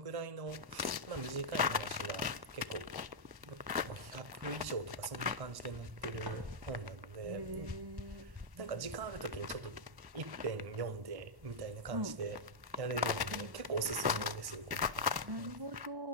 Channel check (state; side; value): late; left; 1.1 ms